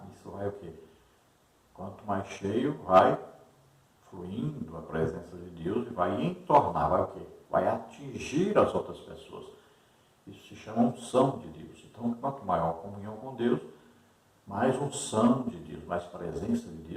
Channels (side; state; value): both; identical; correlation 1.00